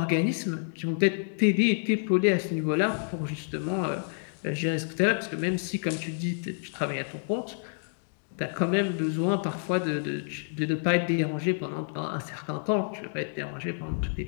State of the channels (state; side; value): silent; right; digital silence